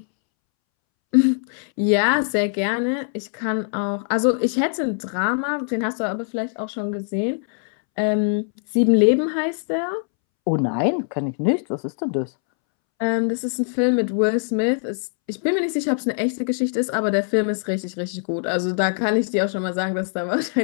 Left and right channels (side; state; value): right; silent; 64 dB below the other